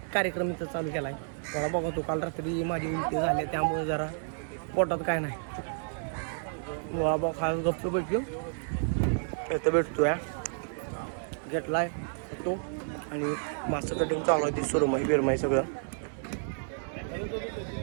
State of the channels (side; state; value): left; silent; digital silence